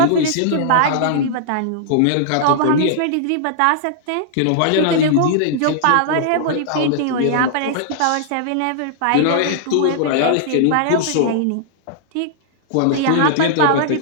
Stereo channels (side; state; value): both; different; correlation -0.01